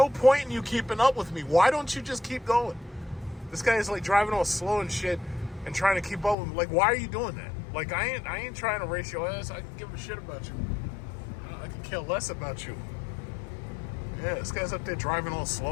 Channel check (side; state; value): right; drops out; at 6.4 s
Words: point in you keeping up with me. Why don't you just keep going? This guy is like driving all slow and shit and trying to keep up with me. Like, why are you doing that? Like, I ain't trying to race your ass. I can give a shit about you. I can care less about you. Yeah, this guy's up there driving all